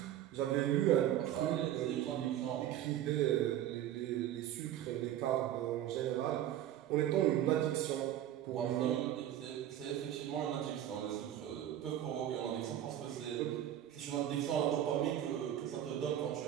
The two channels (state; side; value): quieter; left; 11.8 dB